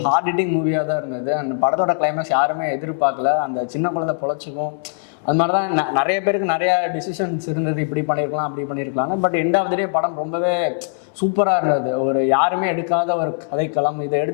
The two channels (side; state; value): right; silent; digital silence